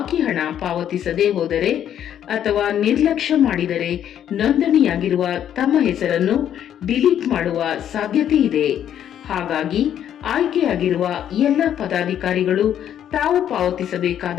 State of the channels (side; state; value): right; quieter; 10.1 dB